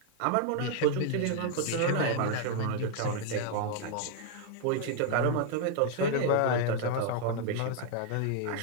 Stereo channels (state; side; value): different; both; correlation 0.00